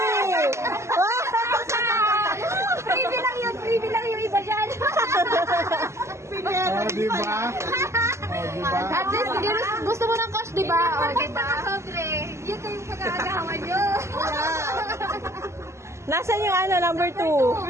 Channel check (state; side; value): late; left; 0.13 ms